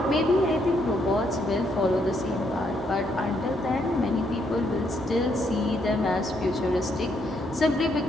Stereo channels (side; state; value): left; noise; rumble, 26 dB below the sound